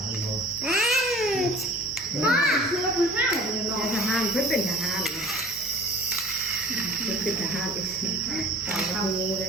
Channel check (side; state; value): both; normal; correlation 0.45